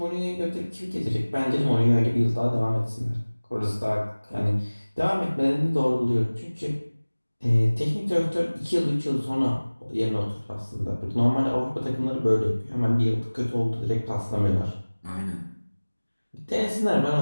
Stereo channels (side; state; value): both; inverted; correlation -1.00